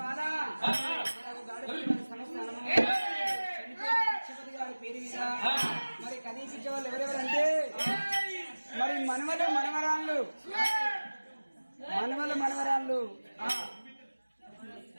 పేరు మీద మరి కనిపించే వాళ్ళు ఎవరెవరంటే మరి మనవరాళ్ళు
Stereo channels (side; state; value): both; inverted; correlation -1.00